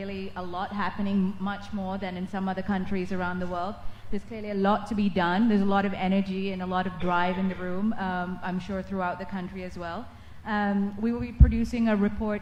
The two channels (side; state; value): both; identical; correlation 1.00